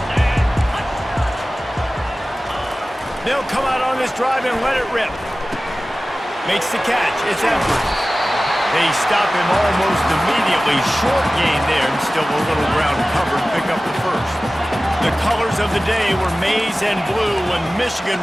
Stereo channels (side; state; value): both; normal; correlation 0.97